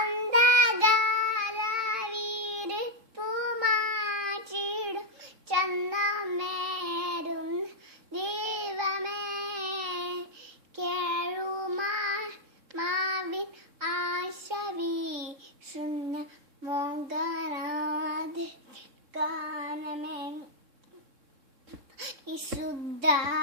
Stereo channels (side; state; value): left; late; 3.6 ms